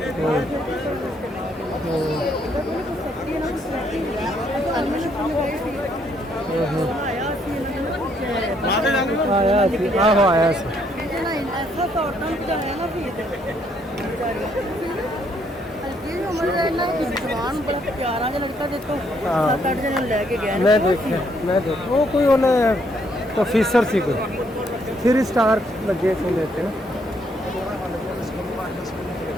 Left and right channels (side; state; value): both; normal; correlation 0.70